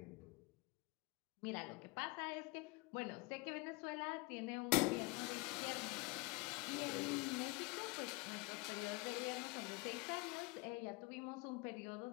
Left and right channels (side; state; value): right; quieter; 26.0 dB